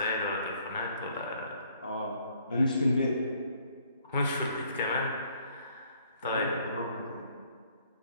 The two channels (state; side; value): inverted; both; correlation -0.64